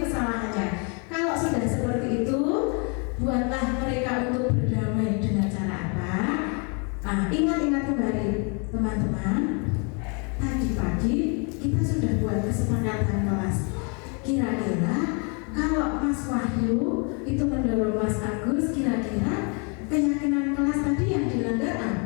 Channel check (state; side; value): quieter; right; 35.6 dB